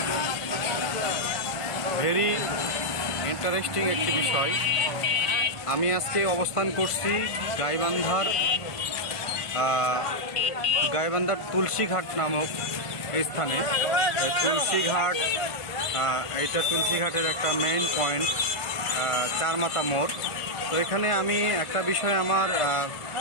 very interesting একটি বিষয়। আমি আজকে অবস্থান করছি গাইবান্ধার তুলসীঘাট নামক স্থানে। তুলসীঘাট, এইটা তুলসীঘাটের একটা মেইন পয়েন্ট, চারমাথা মোড়। তো এখানে আমি একটা বিষয় আমার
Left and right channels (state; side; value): late; right; 1.5 ms